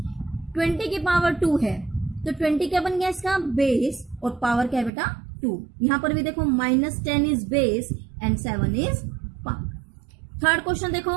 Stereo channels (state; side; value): drops out; left; at 4.9 s